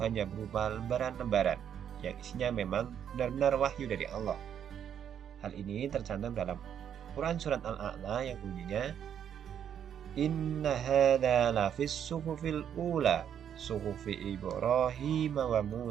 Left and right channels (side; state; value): left; quieter; 9.0 dB